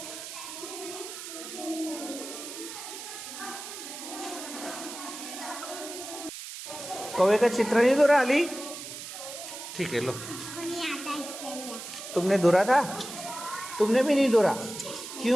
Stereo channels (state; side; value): noise; right; hiss, 10 dB below the sound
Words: कौवे का चित्र नहीं दौरा अली? ठीक है, लो। तुमने दौरा था? तुमने भी नहीं दौरा?